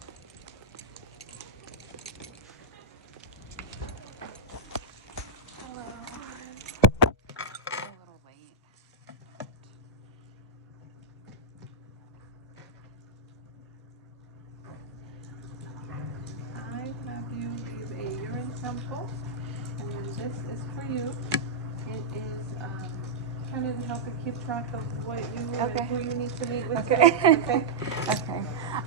sample. And then this is for you. It is kind of to help you keep track of what you and who you need to meet with. Okay. Okay. Okay.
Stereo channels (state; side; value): quieter; left; 3.4 dB